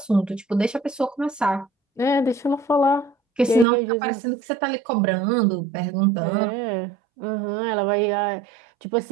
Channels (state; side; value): drops out; left; at 3.7 s